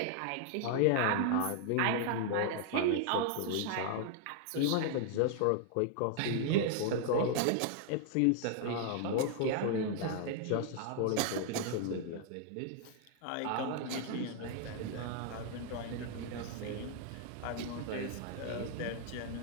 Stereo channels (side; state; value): both; different; correlation 0.00